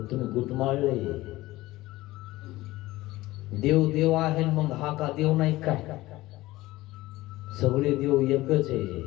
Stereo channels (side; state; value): right; quieter; 18.1 dB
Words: तुम्ही गुटमाळले. देव देव आहे मग हा का देव नाही काय. सगळे देव एकच आहे.